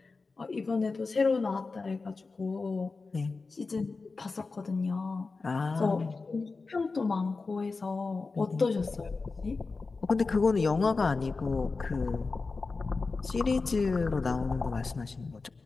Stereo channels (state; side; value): quieter; right; 4.1 dB